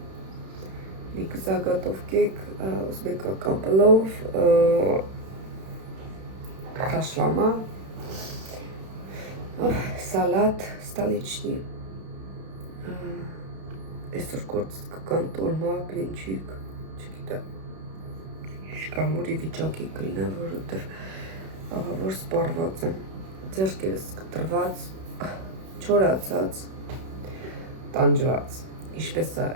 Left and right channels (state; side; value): late; left; 31 ms